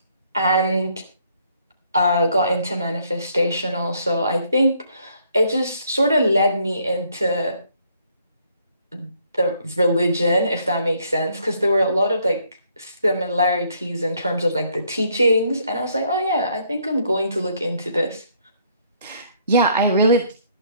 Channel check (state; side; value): inverted; both; correlation -0.67